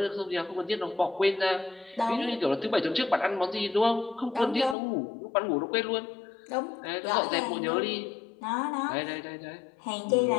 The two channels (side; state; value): right; drops out; at 4.8 s